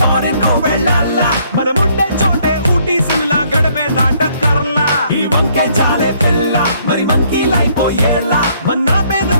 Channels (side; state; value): both; inverted; correlation -0.66